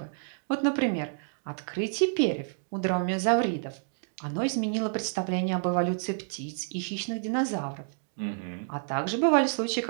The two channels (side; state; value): left; silent; digital silence